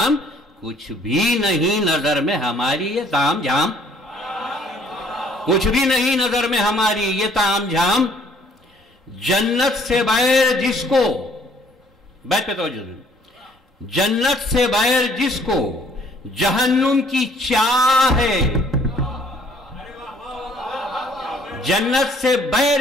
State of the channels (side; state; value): both; normal; correlation 0.60